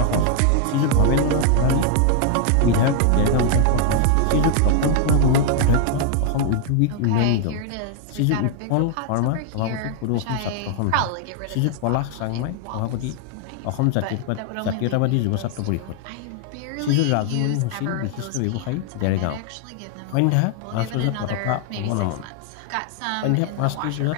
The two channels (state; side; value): different; both; correlation 0.00